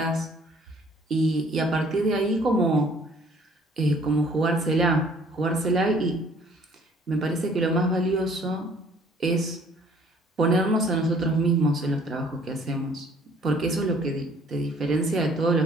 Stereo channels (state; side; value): normal; both; correlation 0.58